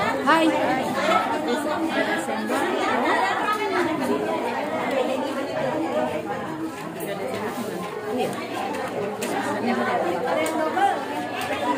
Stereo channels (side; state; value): both; identical; correlation 1.00